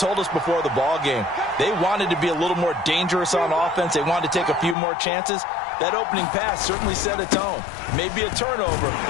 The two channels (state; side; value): drops out; right; at 4.8 s